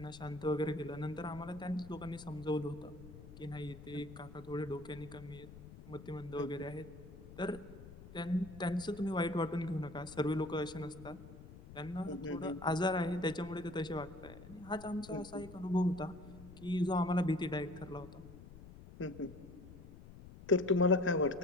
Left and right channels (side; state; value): left; noise; rumble, 16 dB below the sound